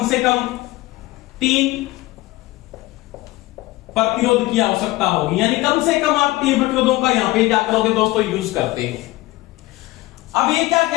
से कम 3 प्रतिरोध की आवश्यकता होगी। यानी कम से कम आप 3 प्रतिरोधों का यहां पे क्या करोगे दोस्तों, यूज करते हो। अब ये क्या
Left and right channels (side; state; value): right; quieter; 19.3 dB